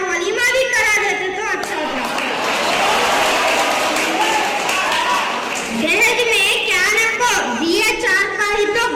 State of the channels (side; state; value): both; identical; correlation 1.00